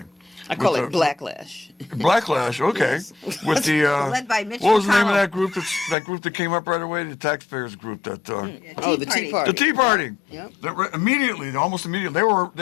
I call With it the- blacklash. Backlash, okay. Yes. With the Led by Mitch what was the name of McConnell. that group? That group that came up right away, the taxpayers group. That Oh, the Tea Party. the Tea Party. Yep. Almost immediately,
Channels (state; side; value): drops out; right; at 6.0 s